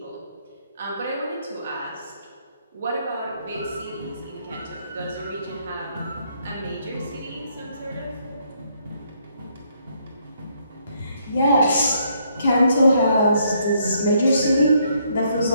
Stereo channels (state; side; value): inverted; both; correlation -0.71